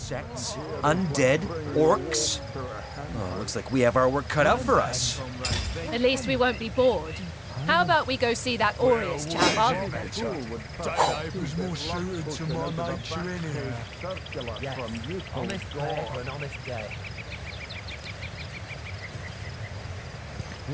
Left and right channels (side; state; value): both; identical; correlation 1.00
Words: undead, orcs. Oh, looks like we have our work cut out for us. At least we won't be bored. How about we go see that Aureus chap, Arhu? Day labour's more suited to my nature anyhow. Yes, honest pay for an honest day.